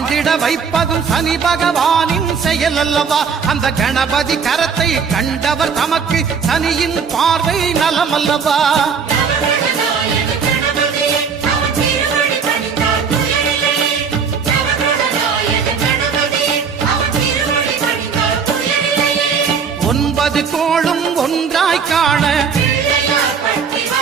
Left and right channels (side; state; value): left; quieter; 6.1 dB